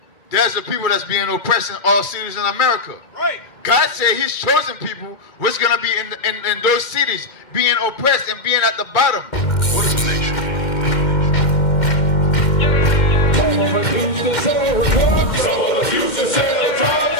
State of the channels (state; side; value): late; right; 2.1 ms